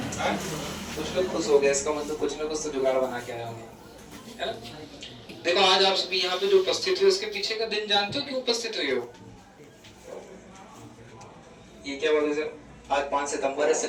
हाँ? कुछ लोग खुश हो गए, इसका मतलब कुछ ना कुछ तो जुगाड़ बना के आए होंगे, है ना? देखो आज आप सभी यहाँ पे जो उपस्थित हो, इसके पीछे का दिन जानते हो क्यों उपस्थित हुए हो? ये क्या बोले सर? आज 5 सितंबर है,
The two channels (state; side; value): identical; both; correlation 1.00